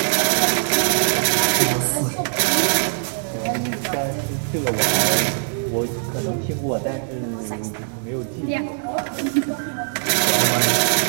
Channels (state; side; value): silent; left; digital silence